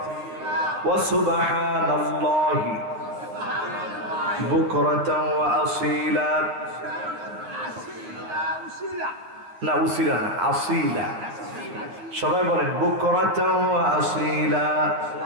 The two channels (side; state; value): left; late; 10 ms